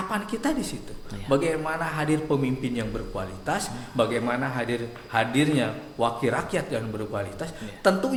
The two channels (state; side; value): identical; both; correlation 1.00